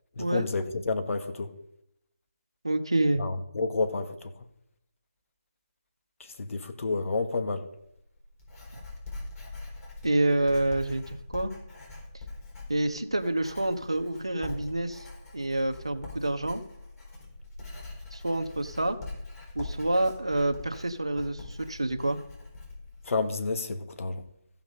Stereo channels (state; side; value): inverted; both; correlation -0.89